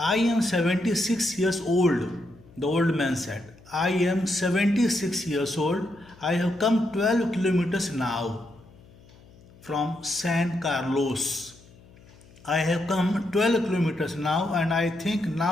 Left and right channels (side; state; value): left; noise; hum, 25 dB below the sound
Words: am 76 years old. The old man said, I am 76 years old. I have come 12 kilometers now from San Carlos. I have come 12 kilometers now and I think